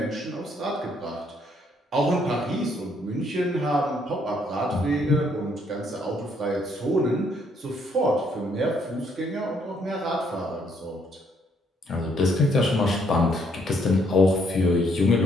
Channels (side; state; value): both; normal; correlation 0.69